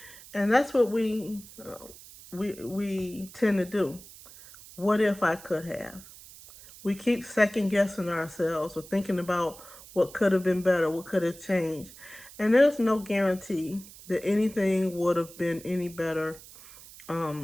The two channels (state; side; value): noise; right; hiss, 19 dB below the sound